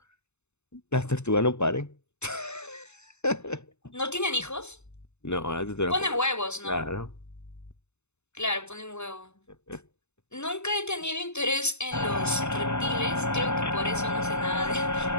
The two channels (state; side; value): late; right; 0.82 ms